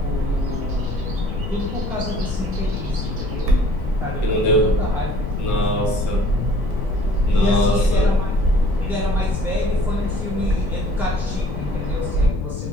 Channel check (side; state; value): left; noise; rumble, 6 dB below the sound